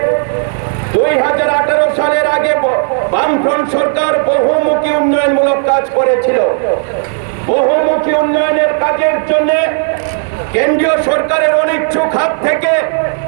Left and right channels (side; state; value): left; silent; 61 dB below the other